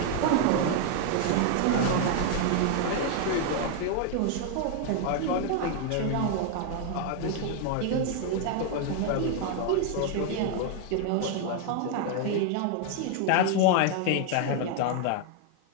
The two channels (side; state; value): both; different; correlation 0.00